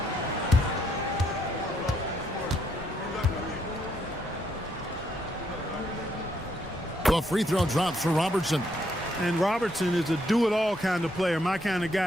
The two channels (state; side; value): normal; both; correlation 0.74